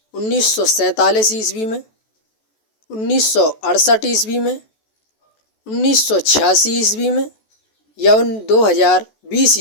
1947 ईस्वी में, 1968 ईस्वी में, 1986 ईस्वी में या 2020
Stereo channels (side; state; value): right; late; 14 ms